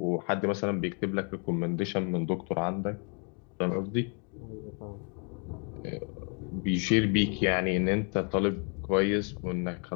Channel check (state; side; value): quieter; right; 39.5 dB